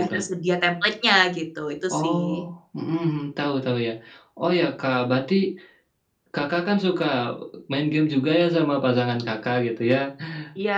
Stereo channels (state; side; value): identical; both; correlation 1.00